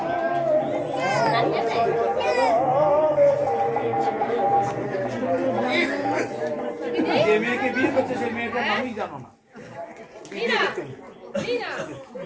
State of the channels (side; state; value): both; identical; correlation 1.00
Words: যে মেয়েকে বিয়ে করছে সেই মেয়েটার নামই জানো না।